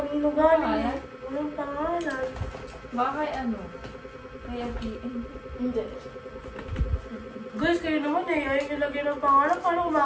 galing. Ayan? Walang pangalan. Baka kay ano? Kaya PM. Hindi. Guys, kayo naman eh. Ayaw nyo lagyan ng pangalan. Paano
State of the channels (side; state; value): both; identical; correlation 1.00